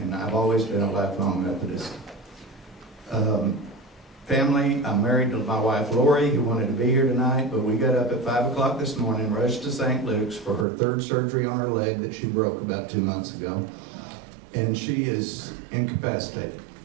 I've always been a lifelong Methodist. Family, I'm married to my wife Lori, who wanted to be here tonight, but we got up at 5 o'clock this morning, rushed to St. Luke's for her 3rd surgery on her leg that she broke about 2 months ago, and she is incapacitated.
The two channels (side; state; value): left; drops out; at 10.7 s